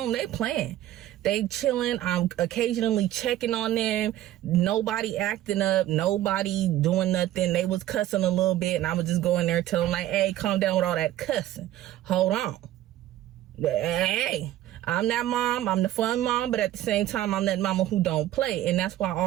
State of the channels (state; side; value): quieter; left; 13.6 dB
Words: they playing, they chilling. I'm occasionally checking on them. Nobody acting up, nobody doing nothing. They was cussing a little bit, and I would just go in there and tell them like, hey, calm down with all that cussing. Hold on. Hey, I'm that mom, I'm the fun mom, but at the same time, I'm that mama who don't play. And that's why